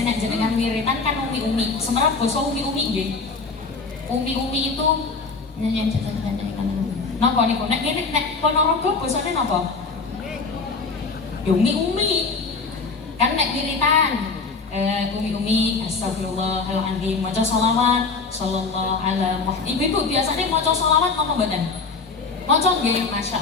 nek jenengan wiritan kan umi-umi. Semerap basa umi-umi nggih. Umi-umi itu napa niku? Nek ngene nek Ponorogo basane napa? Yo umi-umi. Kan nek wiritan umi-umi astagfirullahaladzim, maca sholawat sallallahu ala Muhammad. Ibu-ibu biasanya maca sholawat napa mboten? Maca nggih,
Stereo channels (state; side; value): quieter; right; 4.4 dB